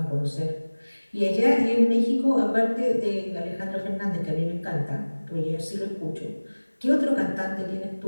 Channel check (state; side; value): inverted; both; correlation -1.00